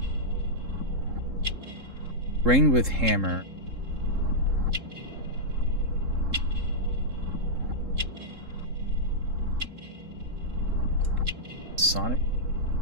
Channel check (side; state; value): left; late; 3.7 ms